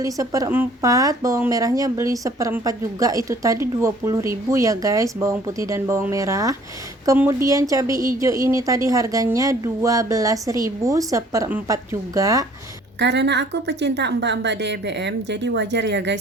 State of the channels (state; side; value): normal; both; correlation 0.56